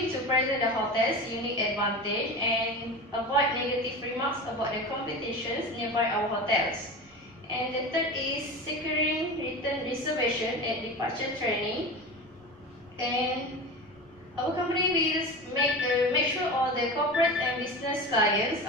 to present the hotel's unique advantage and avoid negative remarks about the competitions nearby our hotels. And the third is securing written reservation at departure training. And our company will make sure all the corporate and business clients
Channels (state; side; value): normal; both; correlation 0.29